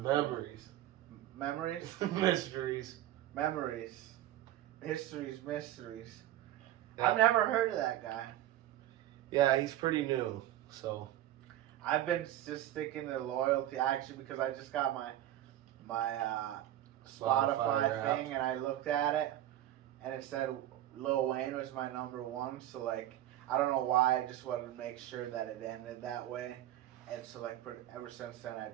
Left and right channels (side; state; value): left; quieter; 13.3 dB